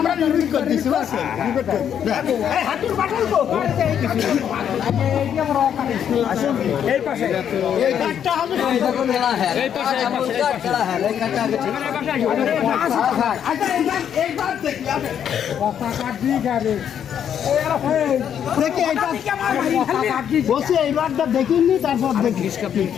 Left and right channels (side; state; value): right; quieter; 8.9 dB